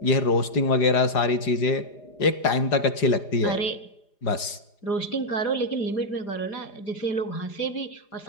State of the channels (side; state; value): right; late; 4.9 ms